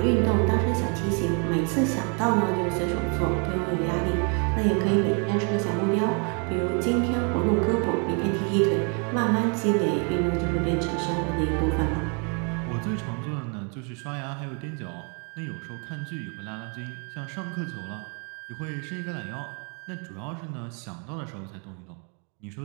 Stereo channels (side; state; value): left; quieter; 37.1 dB